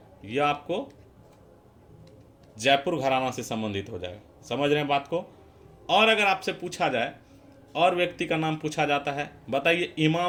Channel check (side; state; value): both; identical; correlation 1.00